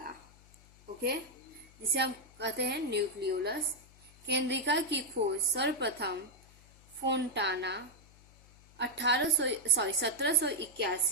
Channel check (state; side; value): noise; left; hum, 25 dB below the sound